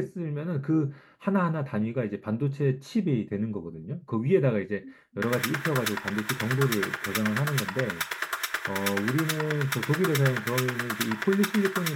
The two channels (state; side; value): identical; both; correlation 1.00